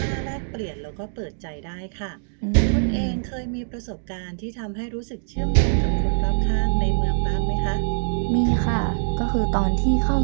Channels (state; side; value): silent; left; digital silence